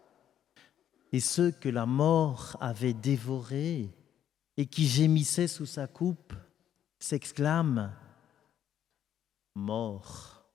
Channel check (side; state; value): right; quieter; 10.2 dB